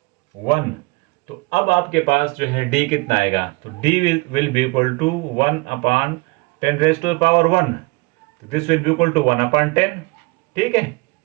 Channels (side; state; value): left; quieter; 26.3 dB